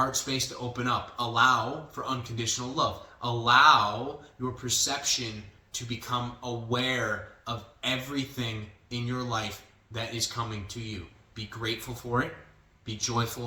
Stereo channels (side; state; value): both; identical; correlation 1.00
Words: space to open up. Allow for unconditional love. Allow your perception to become aware of everything in your life that is coming to you. Be grateful for it. Be